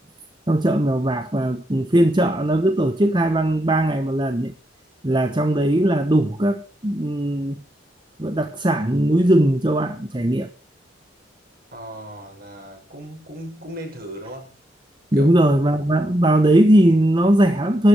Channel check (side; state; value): both; normal; correlation 0.81